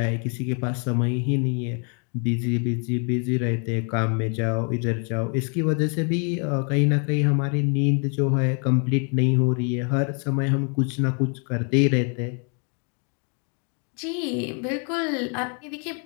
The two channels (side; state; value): right; quieter; 39.1 dB